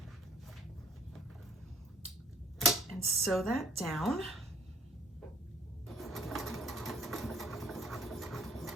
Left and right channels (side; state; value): both; normal; correlation 0.57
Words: and sew that down.